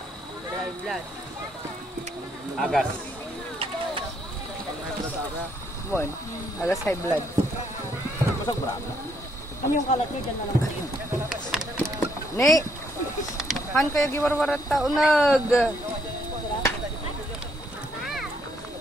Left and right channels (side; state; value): both; normal; correlation 0.71